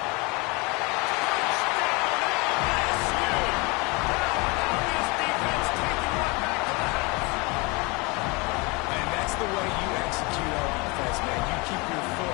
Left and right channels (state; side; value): quieter; right; 27.3 dB